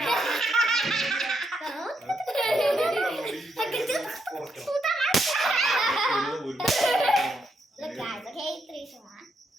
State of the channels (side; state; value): both; normal; correlation 0.79